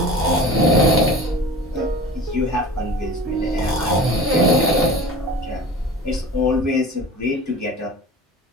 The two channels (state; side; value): normal; both; correlation 0.37